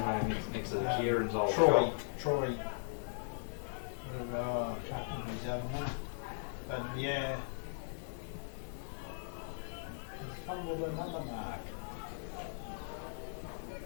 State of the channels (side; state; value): right; silent; digital silence